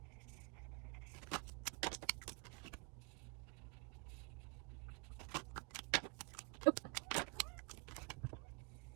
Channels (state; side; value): quieter; left; 33.7 dB